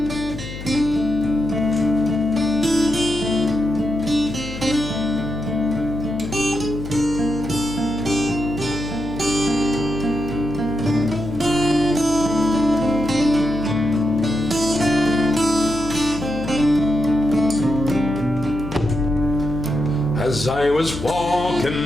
As I was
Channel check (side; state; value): left; noise; hum, 10 dB below the sound